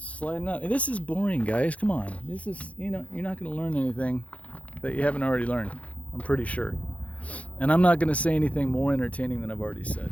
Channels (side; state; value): right; late; 0.065 ms